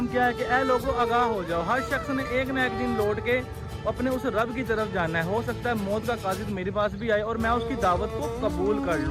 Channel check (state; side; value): identical; both; correlation 1.00